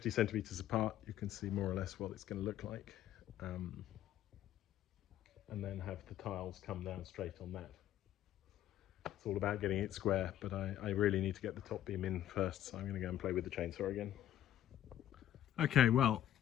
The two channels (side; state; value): right; quieter; 11.9 dB